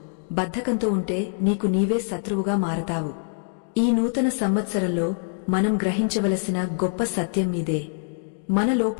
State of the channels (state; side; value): silent; right; digital silence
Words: బద్ధకంతో ఉంటే నీకు నీవే శత్రువుగా మారతావు. ఈ నూతన సంవత్సరంలో మనం గ్రహించవలసిన గొప్ప సత్యం ఇదే. మన